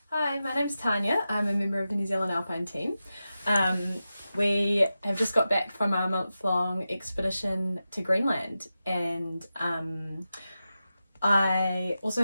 Hi, my name's Tanya. I'm a member of the New Zealand Alpine Team. We have just got back from our month-long expedition to Greenland, and I also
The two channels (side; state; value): both; inverted; correlation -0.92